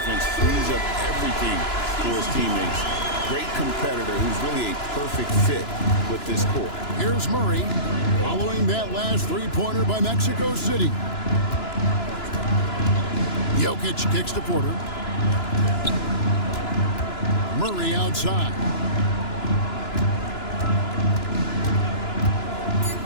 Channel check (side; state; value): right; late; 2.9 ms